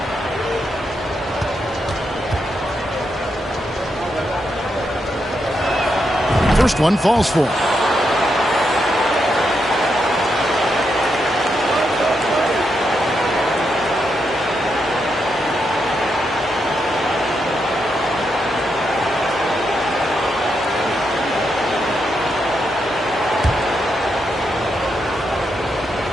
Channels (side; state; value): both; normal; correlation 0.82